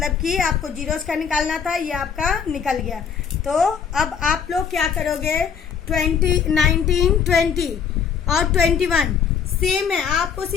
कि आपको जीरोस का निकालना था, ये आपका निकल गया। तो अब आप लोग क्या करोगे, 20, 19, 20 और 21 सेम है, आपको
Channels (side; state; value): right; quieter; 7.0 dB